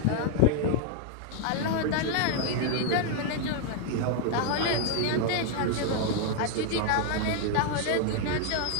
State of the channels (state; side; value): different; both; correlation 0.00